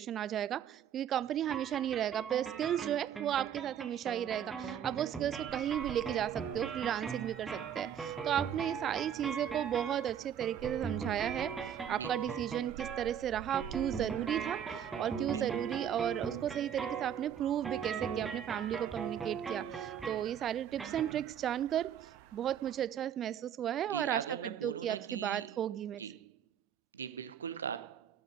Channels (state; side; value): quieter; left; 9.2 dB